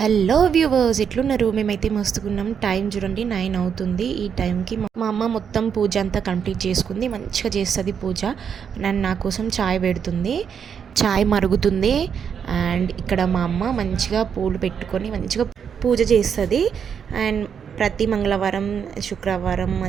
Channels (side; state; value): left; quieter; 7.4 dB